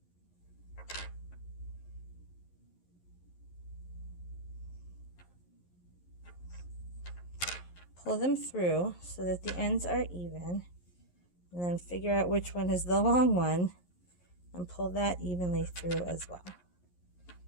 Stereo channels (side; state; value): right; late; 11 ms